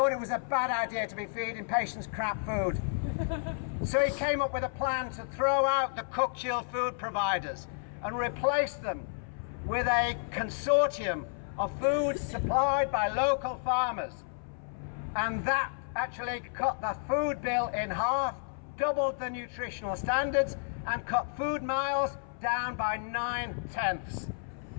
it was a bad idea to be feeding patients crap food. So he came up with a plan to throw out the cooked chilled food providers and replace them with a consortium of foods supplied by local farmers. And that actually cut the food bill in half, doubled the nutritional standards, and cut food miles down by 9/10.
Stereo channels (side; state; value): right; silent; 56 dB below the other